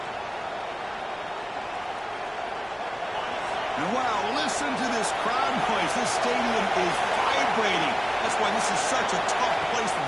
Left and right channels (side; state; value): both; identical; correlation 1.00